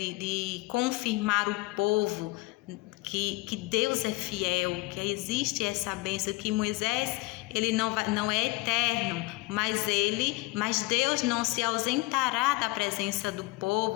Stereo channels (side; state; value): right; quieter; 22.3 dB